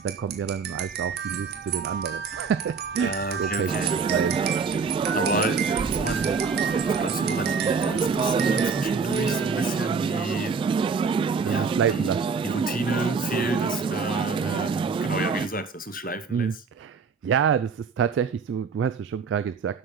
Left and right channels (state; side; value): quieter; left; 5.1 dB